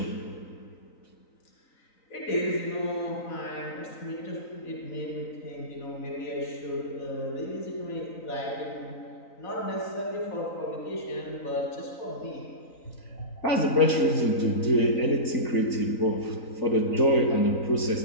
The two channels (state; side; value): late; right; 3.9 ms